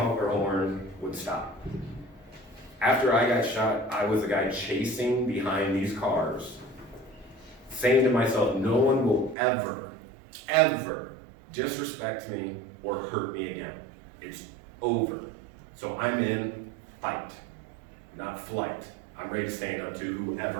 their horn, would stop. After I got shot, I was the guy chasing behind these cars, saying to myself, no one will ever, ever disrespect me or hurt me again. It's over. So I'm in fight, not flight. I'm ready to stand up to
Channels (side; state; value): left; drops out; at 9.3 s